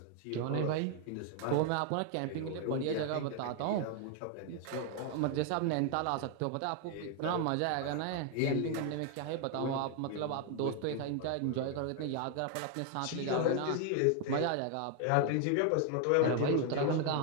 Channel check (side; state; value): both; different; correlation 0.01